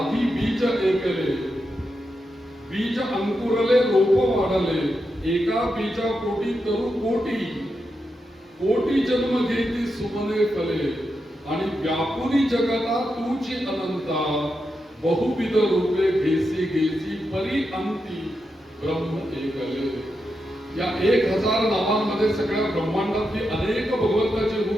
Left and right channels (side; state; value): both; normal; correlation 0.86